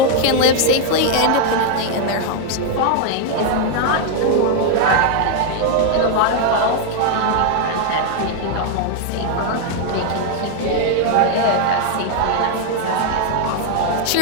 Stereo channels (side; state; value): both; different; correlation 0.00